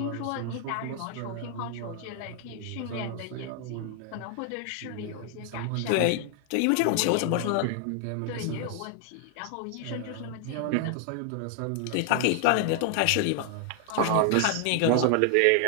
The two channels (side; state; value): both; different; correlation 0.00